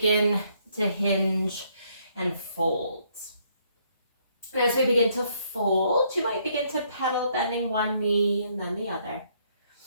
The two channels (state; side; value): inverted; both; correlation -0.69